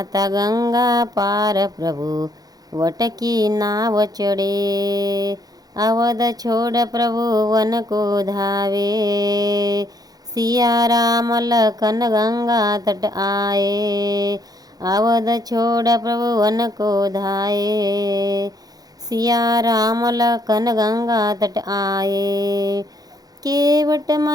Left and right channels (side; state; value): left; late; 0.18 ms